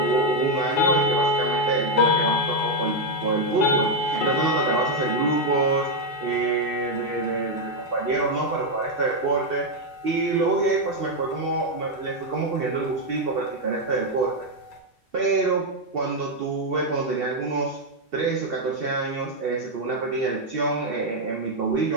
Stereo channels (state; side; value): normal; both; correlation 0.03